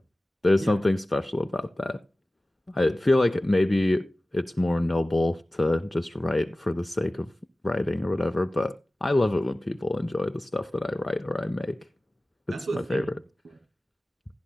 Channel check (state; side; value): normal; both; correlation 0.97